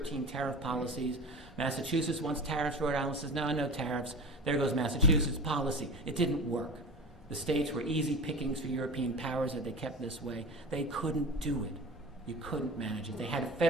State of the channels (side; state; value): both; normal; correlation 0.32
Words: tariff policies. Massachusetts wants tariffs. Rhode Island says, no, no tariffs. There goes Massachusetts policy. It didn't work. The states were easy pickings for European powers that they kept this way. They couldn't do it. You couldn't manage it. They had to